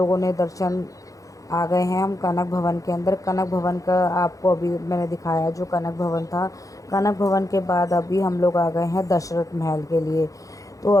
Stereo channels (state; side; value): late; right; 0.16 ms